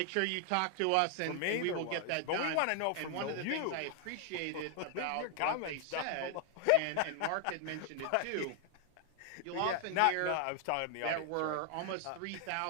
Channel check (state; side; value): different; both; correlation 0.00